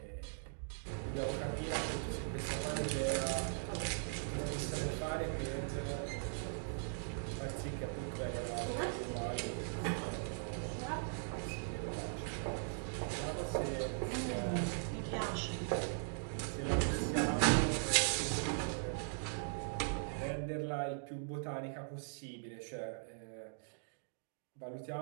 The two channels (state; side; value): silent; left; digital silence